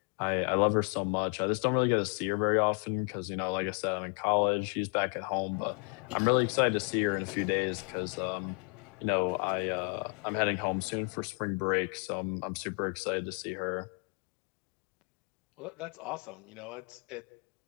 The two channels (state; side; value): quieter; right; 37.8 dB